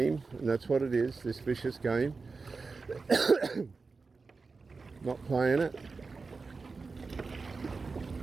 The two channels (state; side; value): quieter; left; 4.3 dB